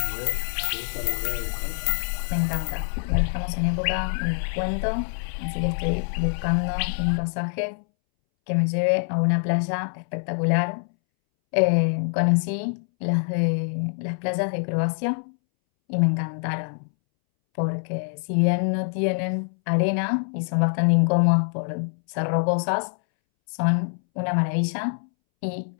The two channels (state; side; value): silent; right; 62 dB below the other